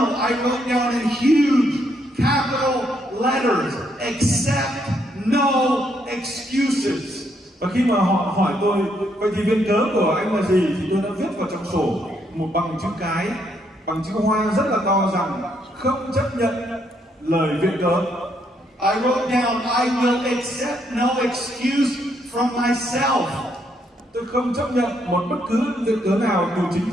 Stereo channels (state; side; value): normal; both; correlation 0.74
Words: I wrote down in huge capital letters, accept no excuses. Và khi mà họ hỏi tôi, vậy thì viện cớ của anh là gì? Thì tôi đã viết vào trong sổ một bằng chữ cái, bằng chữ hoa rất là to rằng không chấp nhận lời viện cớ. I wrote down, I will accept no excuse from myself. Tôi không chấp nhận một bất cứ viện cớ nào từ chính